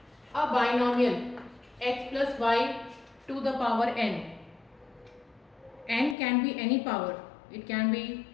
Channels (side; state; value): right; drops out; at 6.2 s